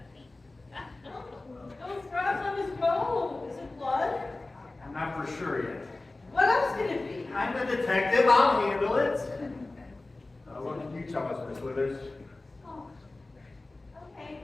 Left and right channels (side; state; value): right; quieter; 3.1 dB